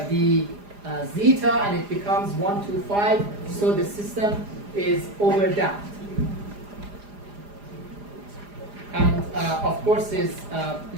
the zeta, and it becomes 1, 2, 5. So the system is overdamped. And of course,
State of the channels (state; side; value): late; left; 4.9 ms